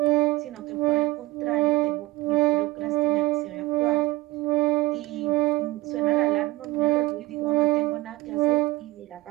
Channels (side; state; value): left; quieter; 20.0 dB